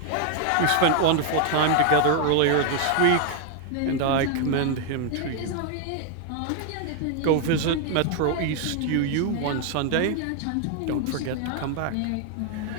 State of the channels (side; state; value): both; different; correlation 0.00